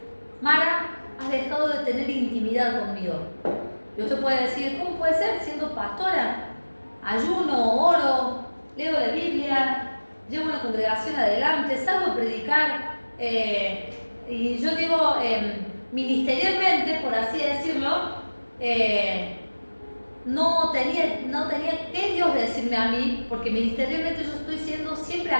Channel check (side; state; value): both; inverted; correlation -1.00